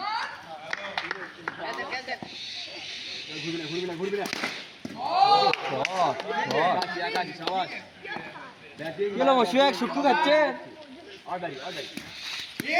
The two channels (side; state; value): both; identical; correlation 1.00